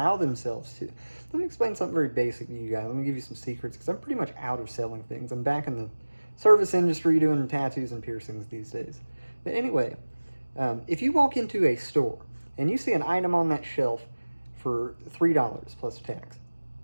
themselves to. Let me explain something very basic to you guys. Let me give you some secrets, because I'm pretty much out of selling things. I'm back in the service industry doing tattoos and piercings these days. But anyway, if you walk into a store and you see an item on that shelf for $3 plus tax,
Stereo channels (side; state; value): both; inverted; correlation -1.00